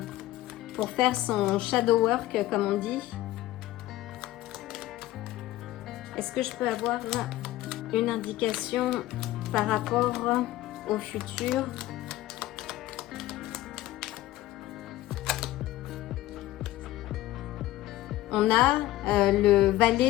pour faire son shadow work, comme on dit. Est-ce que je peux avoir une indication par rapport au futur? On a le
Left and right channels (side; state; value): right; quieter; 15.7 dB